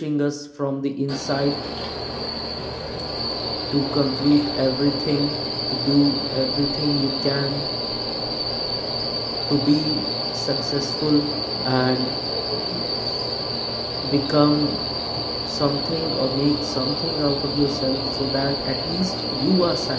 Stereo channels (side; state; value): both; identical; correlation 1.00